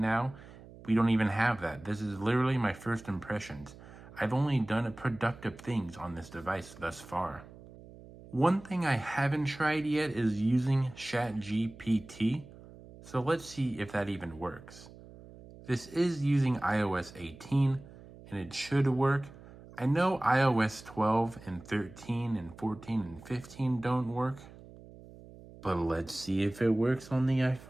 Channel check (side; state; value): right; noise; hum, 19 dB below the sound